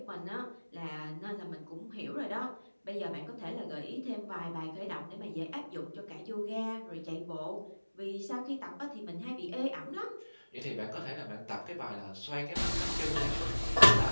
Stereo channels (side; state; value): both; inverted; correlation -1.00